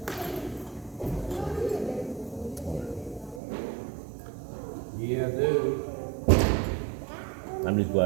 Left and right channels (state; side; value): drops out; left; at 3.4 s